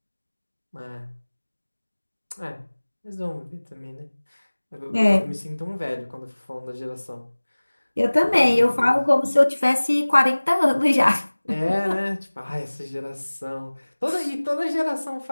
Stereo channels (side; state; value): both; inverted; correlation -1.00